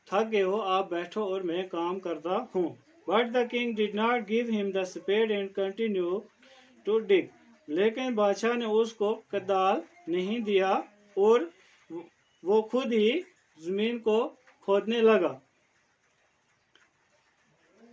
تھک گئے ہو، آپ بیٹھو اور میں کام کرتا ہوں. But the king did not give him the spade and continued to dig. لیکن بادشاہ نے اس کو کدال نہیں دیا اور وہ خود ہی زمین کو کھودنے لگا.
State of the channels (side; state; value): both; identical; correlation 1.00